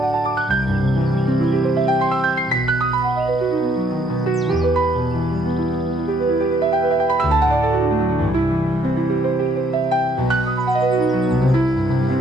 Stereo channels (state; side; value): normal; both; correlation 0.68